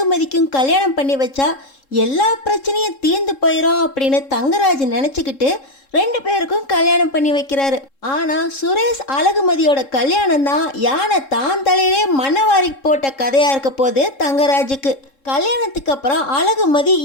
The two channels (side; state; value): right; late; 3.7 ms